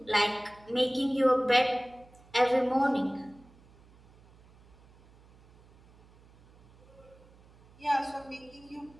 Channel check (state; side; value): noise; right; hum, 27 dB below the sound